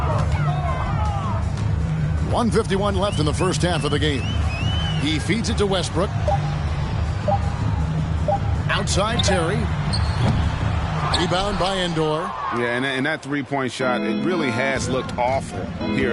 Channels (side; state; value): both; identical; correlation 1.00